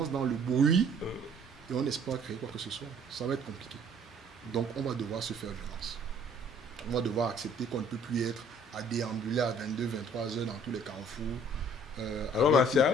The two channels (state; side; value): normal; both; correlation 0.57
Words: dans le bruit et on n'espère créer quoi que ce soit. Ça va être compliqué. Donc on va devoir se faire violence. On va devoir accepter qu'on ne peut plus être à déambuler à 22, 23 heures dans tous les carrefours. Alors